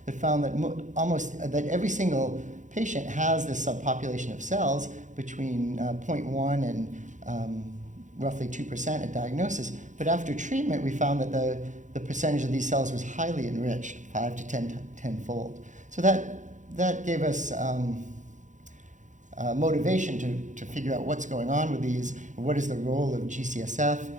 that found that every single patient has this subpopulation of cells between 0.1 and roughly 2% at diagnosis. But after treatment, we found that the percentage of these cells was highly enriched, 5 to 10-fold. So that gave us motivation to figure out what's going on with these, what is the role of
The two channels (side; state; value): left; late; 0.36 ms